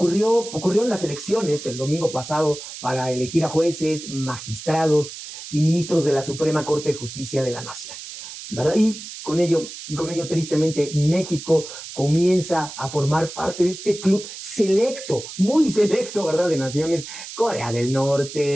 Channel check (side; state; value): right; noise; hiss, 12 dB below the sound